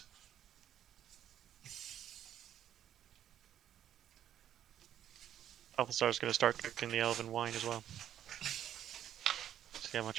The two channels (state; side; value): quieter; left; 10.7 dB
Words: Balthazar's going to start cooking the elven wine as well. See how much